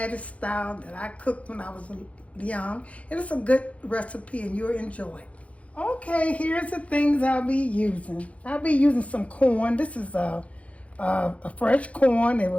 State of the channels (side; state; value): right; late; 0.064 ms